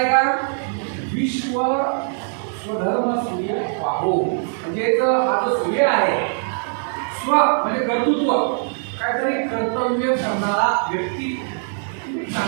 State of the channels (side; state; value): left; silent; digital silence